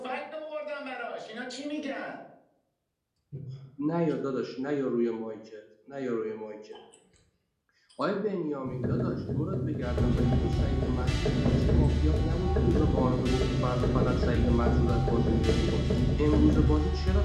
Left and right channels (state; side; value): identical; both; correlation 1.00